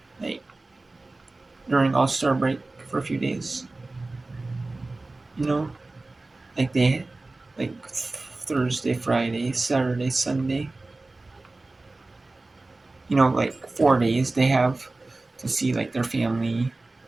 like during All-Star break for a few days. Like they like Thursday, Friday, Saturday, Sunday. Like 4 days they have to see like their family.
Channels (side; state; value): left; quieter; 3.2 dB